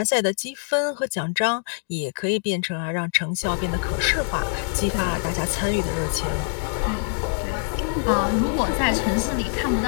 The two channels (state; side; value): silent; right; digital silence